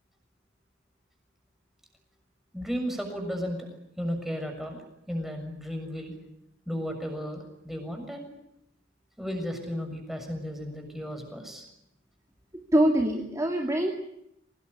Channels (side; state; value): both; normal; correlation 0.83